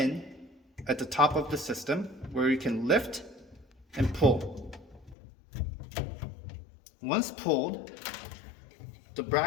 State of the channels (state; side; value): drops out; right; at 5.2 s